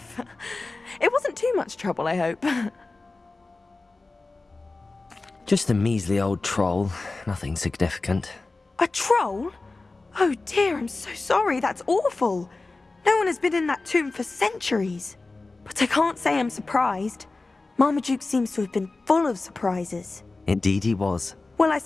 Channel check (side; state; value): right; quieter; 3.4 dB